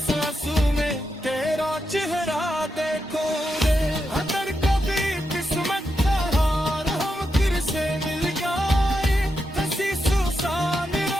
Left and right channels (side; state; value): both; normal; correlation 0.86